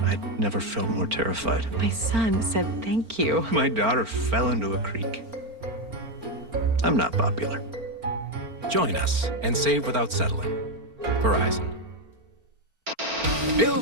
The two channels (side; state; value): left; late; 4.4 ms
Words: I'd never felt more terrified. My son said thank you. My daughter fell into a creek. I'm not popular. Join us and save without settling. Verizon.